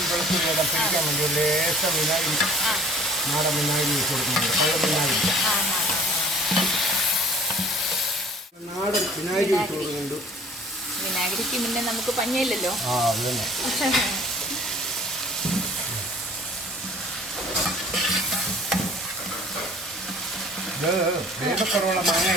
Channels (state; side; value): normal; both; correlation 0.51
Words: വെളുത്തുള്ളി എല്ലാം പിടിക്കാൻ വേണ്ടി ഒരു ലേശം വിനാഗിരി, നാടൻ വിനാഗിരി വെച്ച് കൊടുക്കുന്നുണ്ട്. പഴം വിനാഗിരി, നാടൻ വിനാഗിരി വെച്ച് കൊടുക്കുന്നുണ്ട്. വിനാഗിരിക്ക് പിന്നെ നമുക്ക് പഞ്ഞില്ലല്ലോ. ഇത് വേഗക്കുറവുള്ള മാങ്ങ